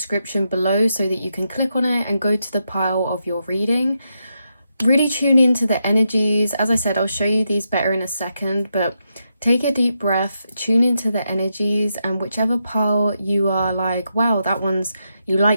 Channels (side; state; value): both; inverted; correlation -0.84